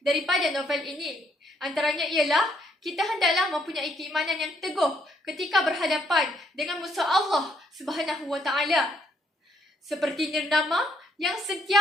daripada novel ini. Antaranya ialah kita hendaklah mempunyai keimanan yang teguh ketika berhadapan dengan musuh Allah Subhanahu Wa Taala. Seperti Nirnama yang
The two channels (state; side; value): normal; both; correlation 0.71